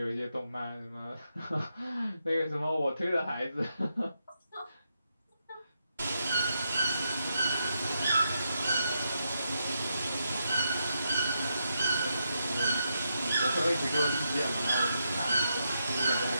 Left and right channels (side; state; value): both; inverted; correlation -0.83